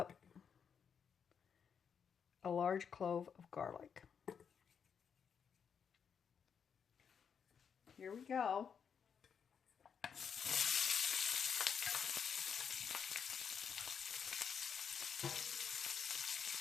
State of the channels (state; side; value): quieter; right; 7.0 dB